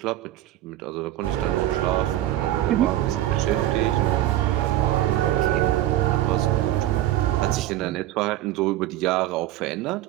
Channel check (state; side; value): quieter; left; 14.0 dB